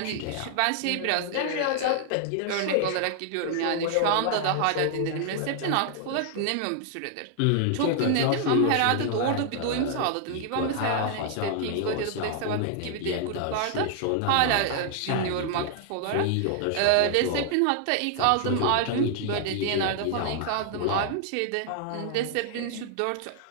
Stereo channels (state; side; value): different; both; correlation 0.00